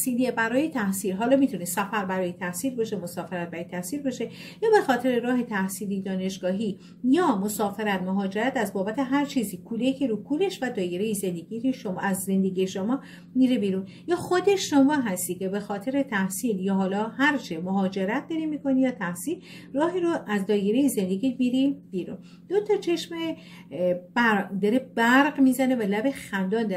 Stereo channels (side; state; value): both; identical; correlation 1.00